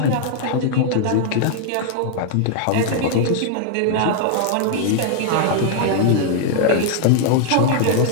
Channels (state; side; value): different; both; correlation 0.00